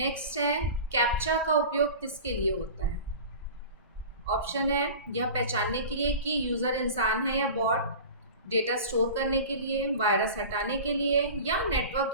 है, कैप्चा का उपयोग किसके लिए होता है? ऑप्शन है, यह पहचानने के लिए कि यूजर इंसान है या बॉट, डेटा स्टोर करने के लिए, वायरस हटाने के लिए या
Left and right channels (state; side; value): inverted; both; correlation -0.36